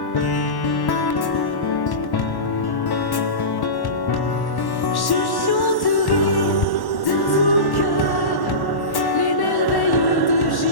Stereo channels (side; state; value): right; late; 1.1 ms